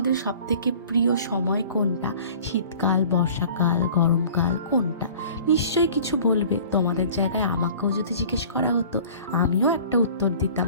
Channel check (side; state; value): both; inverted; correlation -0.47